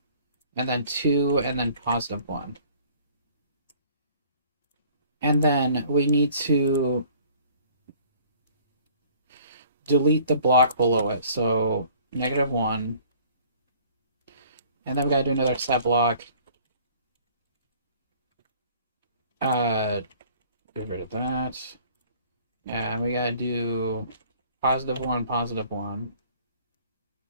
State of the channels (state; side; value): inverted; both; correlation -0.54